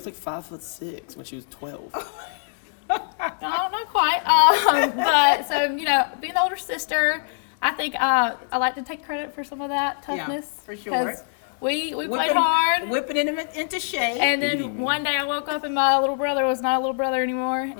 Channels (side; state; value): right; silent; digital silence